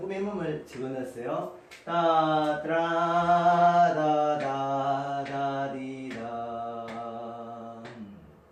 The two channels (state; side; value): identical; both; correlation 1.00